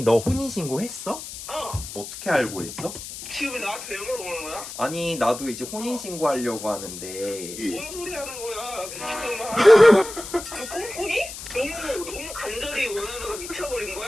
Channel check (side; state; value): left; noise; hiss, 11 dB below the sound